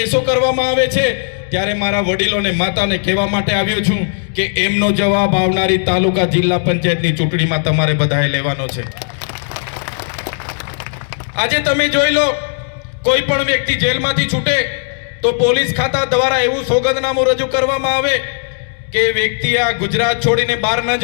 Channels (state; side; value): silent; right; 69 dB below the other